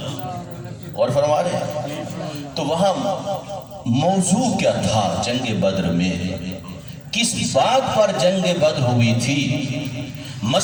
اور فرما رہے ہیں تو وہاں موضوع کیا تھا جنگ بدر میں؟ کس بات پر جنگ بدر ہوئی تھی؟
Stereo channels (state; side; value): identical; both; correlation 1.00